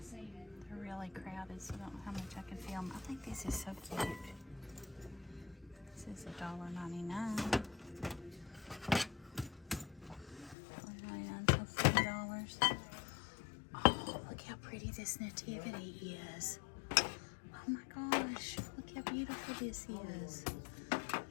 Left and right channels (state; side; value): drops out; right; at 10.6 s